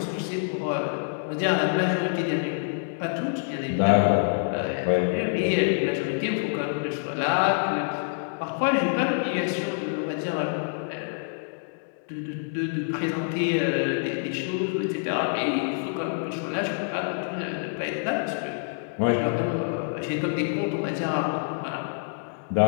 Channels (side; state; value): right; silent; digital silence